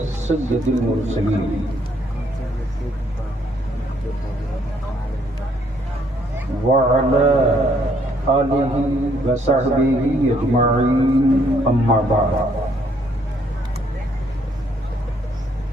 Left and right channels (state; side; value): normal; both; correlation 0.68